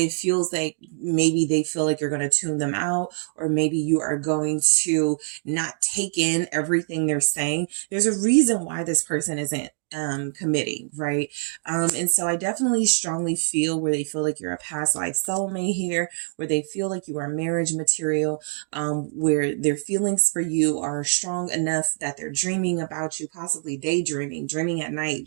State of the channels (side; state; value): left; silent; digital silence